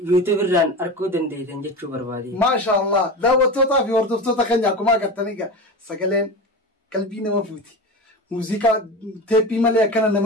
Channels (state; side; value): normal; both; correlation 0.26